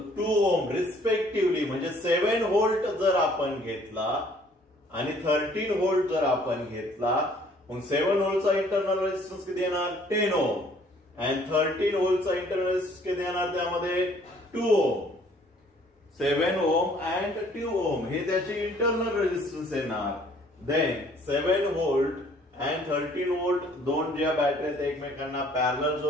ओम रिस्पेक्टिव्हली, म्हणजे 7 व्होल्ट जर आपण घेतला आणि 13 व्होल्ट जर आपण घेतला, मग 7 व्होल्टचा इंटरनल रेजिस्टन्स किती येणार 10 ओम अँड 13 व्होल्टचा इंटरनल रेजिस्टन्स किती येणार त्यामध्ये 2 ओम. 7 ओम अँड 2 ओम हे त्याचे इंटरनल रेजिस्टन्स येणार. देन 7 व्होल्ट अँड 13 व्होल्ट दोन ज्या बॅटरी आहेत एकमेकांना पॅरलल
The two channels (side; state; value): both; normal; correlation 0.59